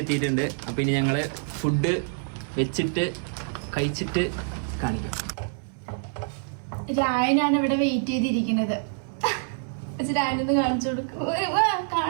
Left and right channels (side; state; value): left; silent; 61 dB below the other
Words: എത്തിയിട്ടുണ്ട്. അപ്പോൾ ഇനി ഞങ്ങൾ ഫുഡ് വെച്ചിട്ട് കഴിച്ചിട്ട് കാണിക്കാം. രായനാണ് ഇവിടെ വെയിറ്റ് ചെയ്തിരിക്കുന്നത്. രായനത് കാണിച്ചു കൊടുക്കും.